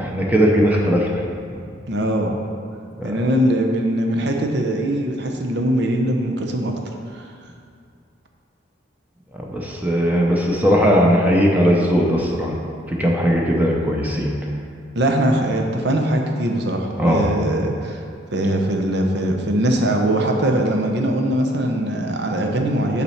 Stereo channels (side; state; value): both; normal; correlation 0.66